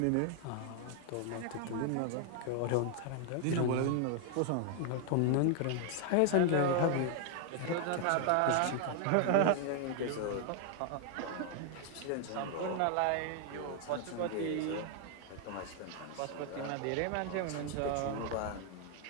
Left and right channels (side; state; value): both; different; correlation 0.00